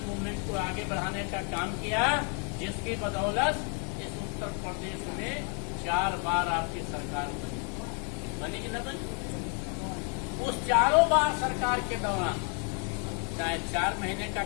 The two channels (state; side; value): quieter; right; 39.5 dB